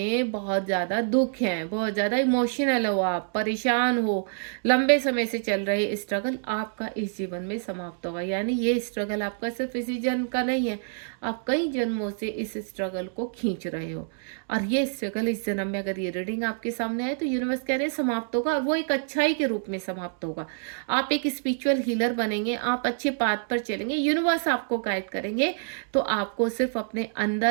बहुत ज़्यादा दुख हैं, बहुत ज़्यादा इमोशनल हो, आप परेशान हो, लंबे समय से चल रहे स्ट्रगल आपका इस जीवन में समाप्त होगा। यानी ये स्ट्रगल आपका सिर्फ इसी जन्म का नहीं है, आप कई जन्मों से इस स्ट्रगल को खींच रहे हो और ये स्ट्रगल इस जन्म में अगर ये रीडिंग आपके सामने है तो यूनिवर्स कह रहे हैं समाप्त होगा, और वो एक अच्छाई के रूप में समाप्त होगा। आप एक स्पिरिचुअल हीलर बनेंगे, आप अच्छे पाथ पर चलेंगे, यूनिवर्स आपको गाइड करेंगे। तो आपको सिर्फ अपने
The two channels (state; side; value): silent; left; digital silence